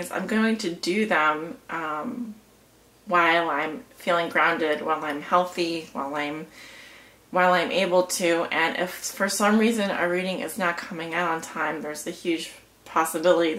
I'm going to do them while I'm feeling grounded, while I'm healthy, while I'm able to. And if for some reason a reading is not coming out on time, there's a huge possibility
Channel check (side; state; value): both; identical; correlation 1.00